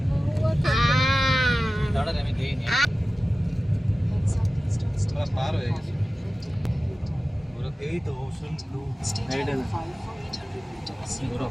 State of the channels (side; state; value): both; normal; correlation 0.96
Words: দাঁড়া আমি দেইনি আমরা পার হয়ে গেছি এই তো ওশন ব্লু। পুরো